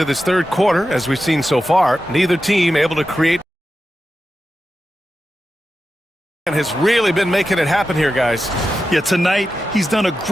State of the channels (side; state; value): both; normal; correlation 0.91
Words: this third quarter, as we've seen so far, neither team able to create and has really been making it happen here, guys. Yeah, tonight he's done a